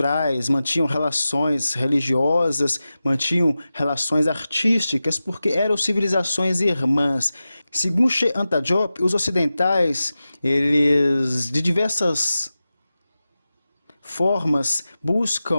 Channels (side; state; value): both; inverted; correlation -0.94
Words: mantinham relações religiosas, mantinham relações artísticas, porque eram civilizações irmãs. Segundo Sheikh Anta Diop, os ocidentais, eles de diversas formas